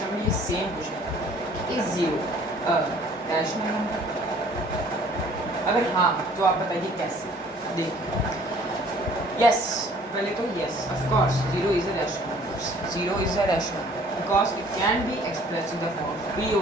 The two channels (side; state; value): both; normal; correlation 0.55